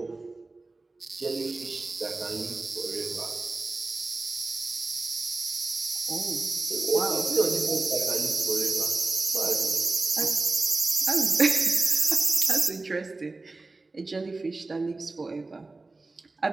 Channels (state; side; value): quieter; left; 3.4 dB